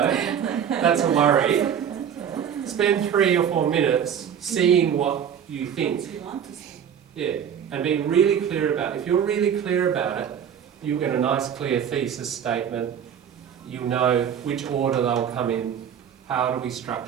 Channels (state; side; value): quieter; left; 8.5 dB